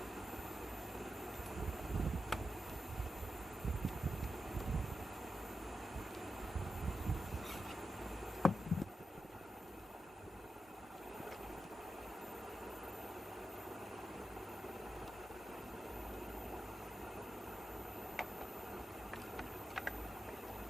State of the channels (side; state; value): both; normal; correlation 0.87